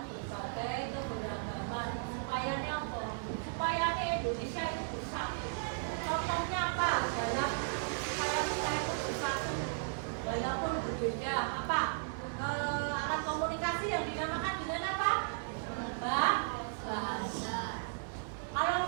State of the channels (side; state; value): left; silent; digital silence